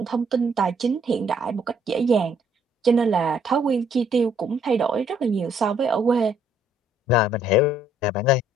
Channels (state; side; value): normal; both; correlation 0.65